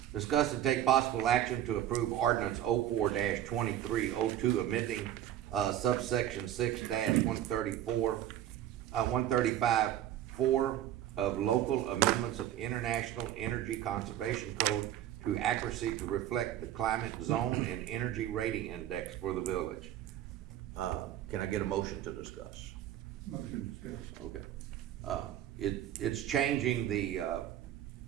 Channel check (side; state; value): left; quieter; 11.9 dB